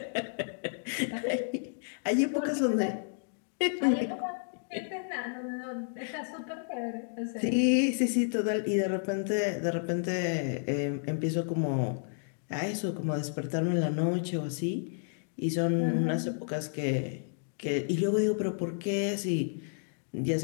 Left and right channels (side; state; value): right; silent; digital silence